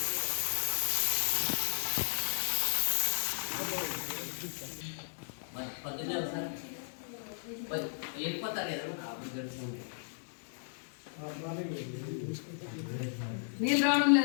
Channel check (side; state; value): right; silent; digital silence